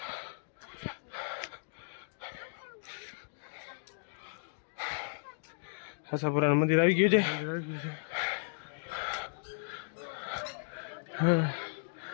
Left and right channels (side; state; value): right; silent; digital silence